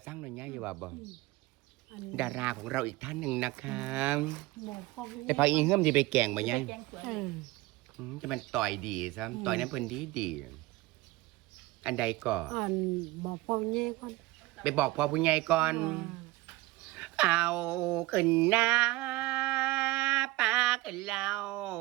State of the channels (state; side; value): quieter; left; 19.9 dB